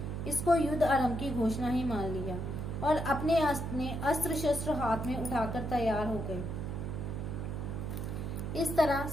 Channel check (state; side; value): noise; right; hum, 4 dB below the sound